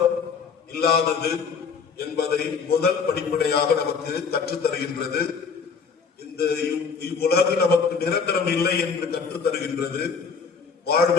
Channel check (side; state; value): right; quieter; 5.6 dB